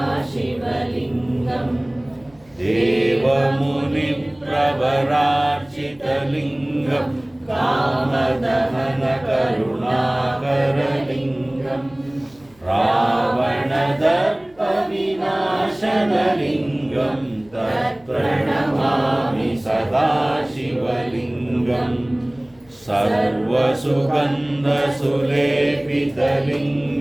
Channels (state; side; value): noise; left; hum, 30 dB below the sound